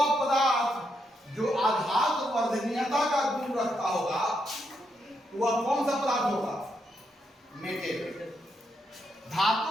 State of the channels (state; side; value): normal; both; correlation 0.80